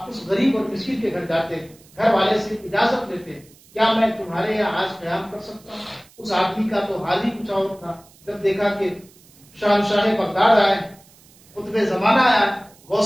اس غریب اور مسکین کے گھر جاتے، گھر والے سے اجازت لیتے، کیا میں تمہارے یہاں آج قیام کر سکتا ہوں؟ اس آدمی کا تو حال ہی کچھ اور تھا. جب دیکھا کہ شہنشاہ بغداد آئے، قطب زمانہ آیا،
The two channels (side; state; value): right; noise; hiss, 27 dB below the sound